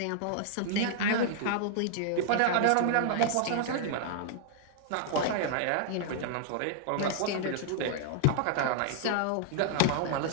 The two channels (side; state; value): both; different; correlation 0.00